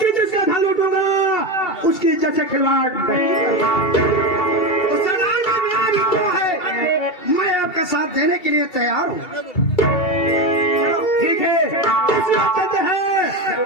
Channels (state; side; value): late; right; 2.2 ms